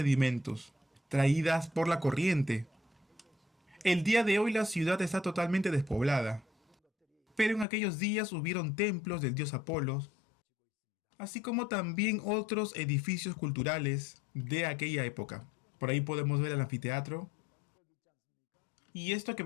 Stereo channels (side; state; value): right; drops out; at 7.7 s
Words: traídas por la corriente. El día de hoy la ciudad está totalmente despoblada, pero en aquellos días hubieron templos del dios Apolos, así como también otros edificios culturales de aquella época. Por ahí podemos ver el anfiteatro. Y esto que